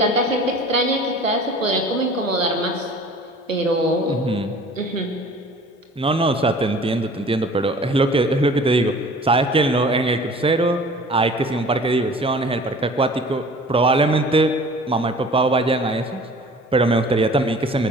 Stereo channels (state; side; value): normal; both; correlation 0.46